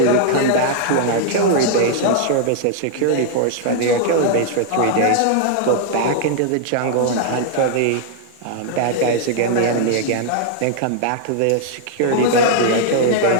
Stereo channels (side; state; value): both; different; correlation -0.01